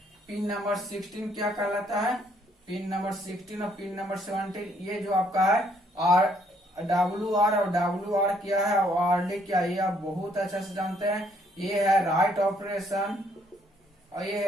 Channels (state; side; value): normal; both; correlation 0.67